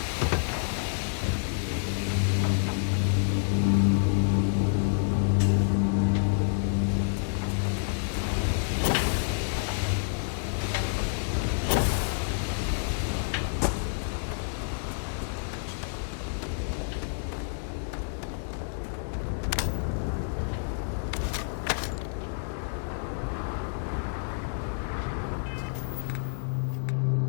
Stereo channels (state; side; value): silent; right; digital silence